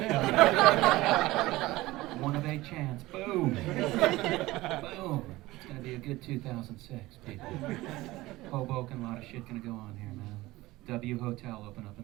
1 of 8 chance. Boom! Boom! It's going to be a good 2006, people. Hoboken, a lot of shit going to go on here, man. W Hotel open up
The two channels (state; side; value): quieter; left; 18.7 dB